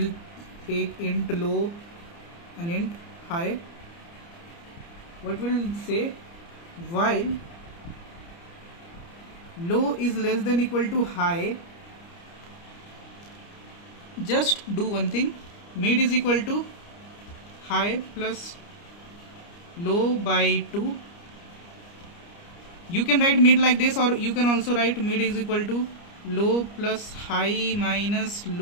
take int low and int high. What will say, while low is less than equal to high, just do one thing, mid is equal to high plus low by 2. You can write mid like this, or you can also write mid is equal to low plus high minus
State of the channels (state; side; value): late; right; 29 ms